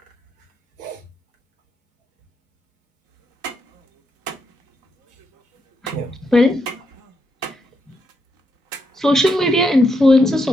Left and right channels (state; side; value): normal; both; correlation 0.80